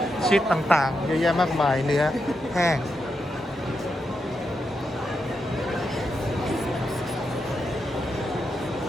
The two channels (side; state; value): both; normal; correlation 0.85